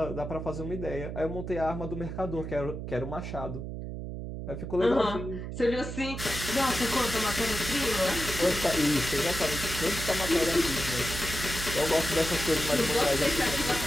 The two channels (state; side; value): noise; right; hum, 7 dB below the sound